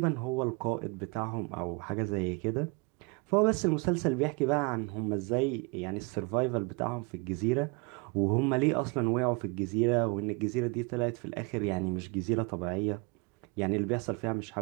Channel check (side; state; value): left; quieter; 30.2 dB